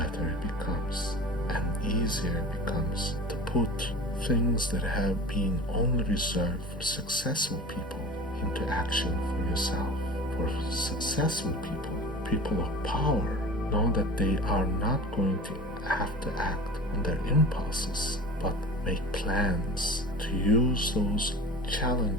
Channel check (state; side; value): normal; both; correlation 0.36